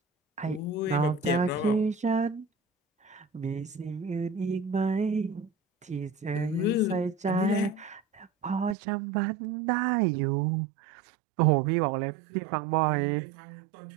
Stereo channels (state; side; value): drops out; left; at 8.8 s